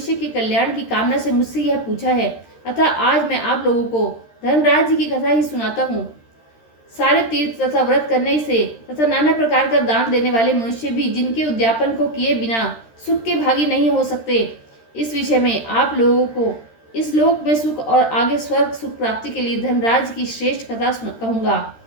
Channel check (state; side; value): late; right; 13 ms